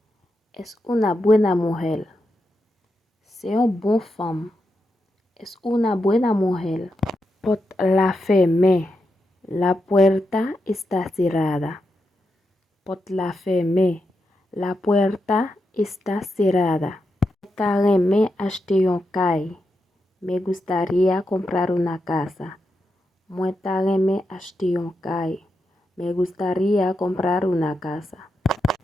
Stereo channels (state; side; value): normal; both; correlation 0.86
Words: Es una buena mujer. C'est une bonne femme. Es una buena mujer. Pot la fermer. La puerta está cerrada. Pot la fermer. La puerta está cerrada. Me acheter un caille. Me gustaría comprar una casa. Me acheter un caille. Me gustaría comprar una casa.